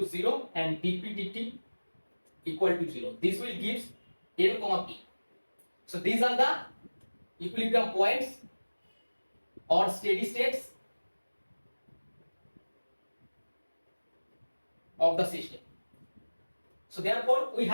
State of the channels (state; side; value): inverted; both; correlation -1.00